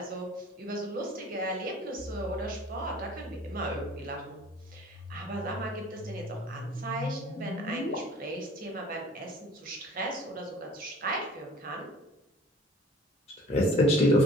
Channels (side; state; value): both; normal; correlation 0.49